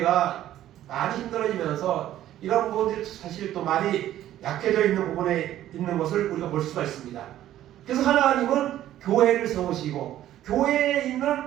많이 힘들어지면서 이런 부분들이 사실 또 많이 약해져 있는 부분에 있는 것을 우리가 볼 수가 있습니다. 그래서 하나님은 교회를 세우시고 교회에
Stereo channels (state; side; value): quieter; left; 12.8 dB